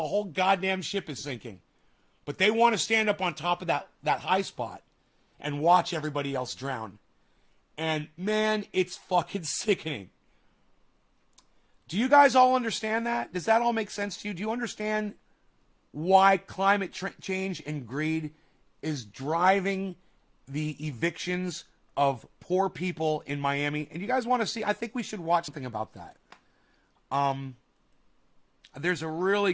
whole goddamn ship is sinking. But they want to stand up on top of that high spot and watch everybody else drown. And man, it's fucking sickening. Do you guys all understand that? Does that all make sense to you? Do you understand why climate change and greed is driving the evictions of poor people in Miami? And you guys want to see, I think we should watch something about that. There's a really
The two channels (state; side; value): identical; both; correlation 1.00